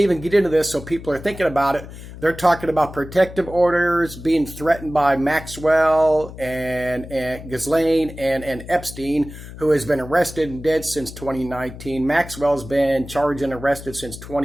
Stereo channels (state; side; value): noise; left; hum, 14 dB below the sound